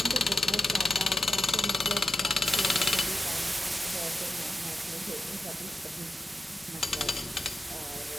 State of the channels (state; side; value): normal; both; correlation 0.90